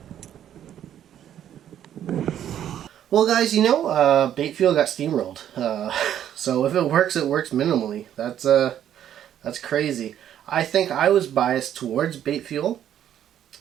Well, guys, you know, bait fuel got steamrolled. So if it works minimally. That's crazy. I think I was biased towards bait fuel.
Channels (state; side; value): quieter; left; 10.5 dB